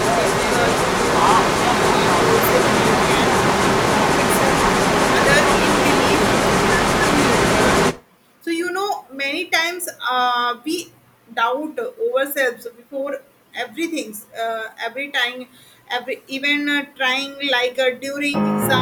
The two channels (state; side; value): identical; both; correlation 1.00